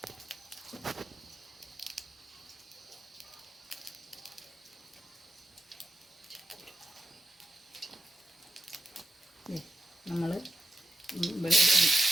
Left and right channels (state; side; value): normal; both; correlation 0.85